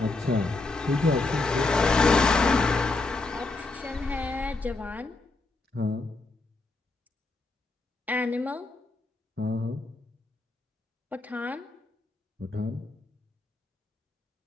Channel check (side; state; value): right; quieter; 3.4 dB